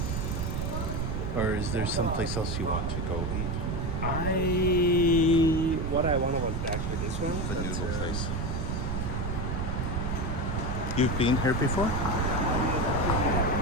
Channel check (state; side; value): noise; right; rumble, 1 dB below the sound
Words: Or is there someplace else you want to go eat? What I wanted was actually this one. The but, noodle place. You've been here before?